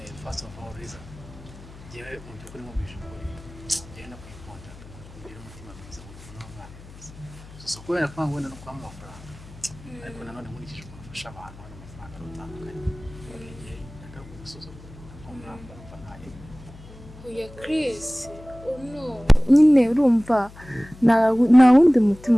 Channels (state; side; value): noise; left; hum, 19 dB below the sound